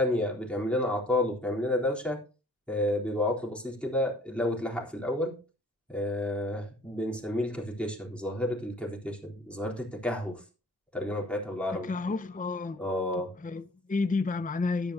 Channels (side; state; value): both; normal; correlation 0.54